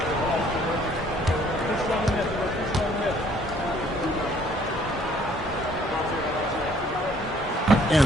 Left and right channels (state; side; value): normal; both; correlation 0.61